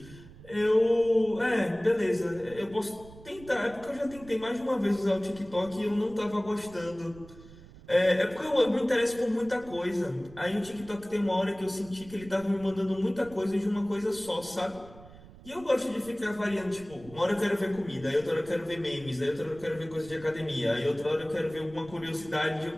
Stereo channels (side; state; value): right; noise; rumble, 19 dB below the sound